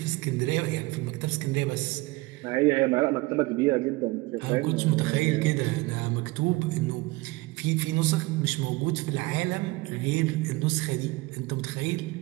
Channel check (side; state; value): left; quieter; 21.9 dB